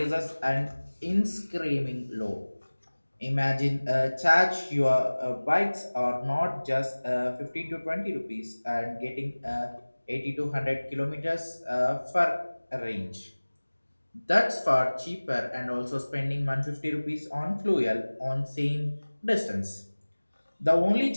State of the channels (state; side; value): inverted; both; correlation -1.00